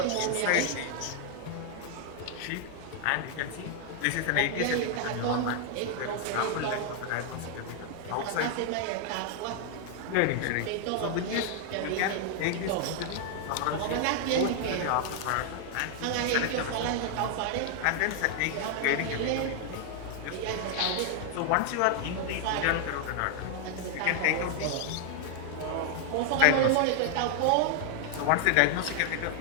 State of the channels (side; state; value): both; different; correlation 0.00